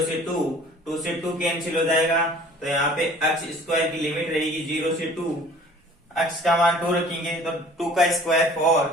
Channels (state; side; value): normal; both; correlation 0.50